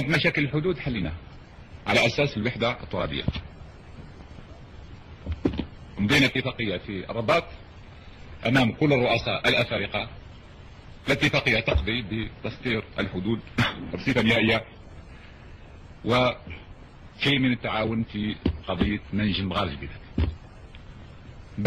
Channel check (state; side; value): identical; both; correlation 1.00